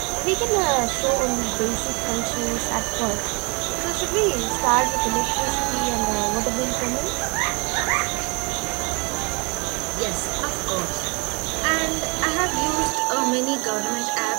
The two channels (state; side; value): quieter; left; 30.5 dB